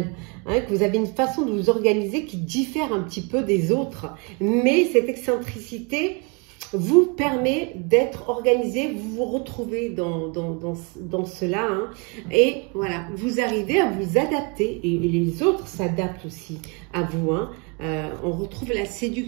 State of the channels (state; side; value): quieter; left; 31.9 dB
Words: Hein, que vous avez une façon de vous organiser qui diffère un petit peu des autres. Mais cette excentricité vous permet d'être organisé, vous vous retrouvez dans cela. Hein, et voilà, vous arrivez à vous adapter. Et les autres s'adaptent aussi à vous. Hein. On retrouve la